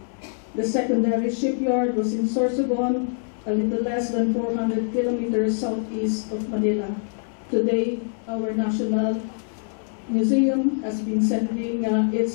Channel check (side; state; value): right; silent; digital silence